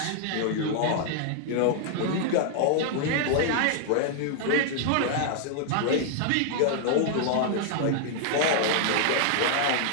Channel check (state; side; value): different; both; correlation 0.00